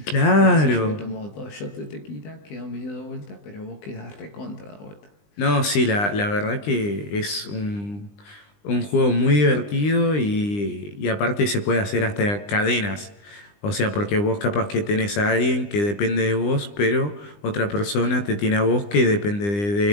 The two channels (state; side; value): late; right; 20 ms